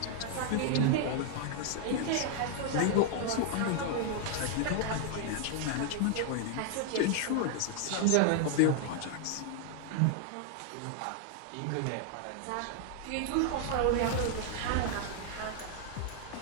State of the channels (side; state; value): both; different; correlation 0.00